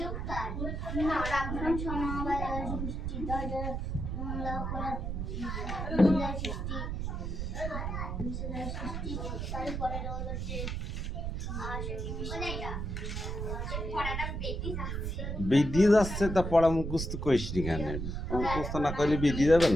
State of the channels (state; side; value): noise; right; rumble, 3 dB below the sound